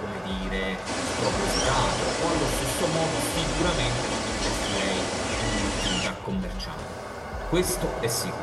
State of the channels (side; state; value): both; identical; correlation 1.00